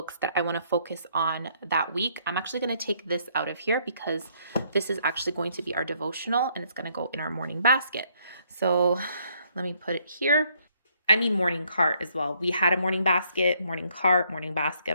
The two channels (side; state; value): both; inverted; correlation -0.69